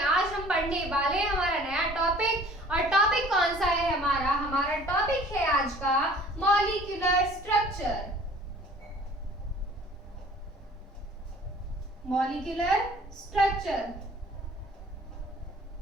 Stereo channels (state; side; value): normal; both; correlation 0.50